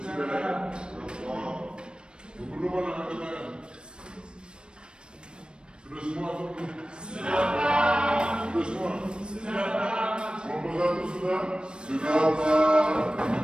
Belum ada angkat tangan. Sudah semua atau belum? Sudah semua? Kelompok 1 sudah?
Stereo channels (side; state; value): left; late; 0.053 ms